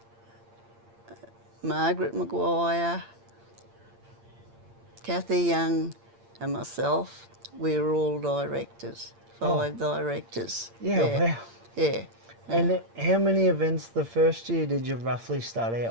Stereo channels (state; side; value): late; left; 8.7 ms